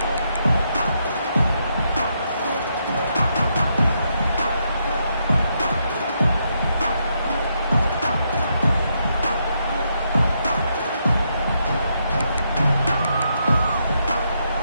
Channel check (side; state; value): both; inverted; correlation -0.79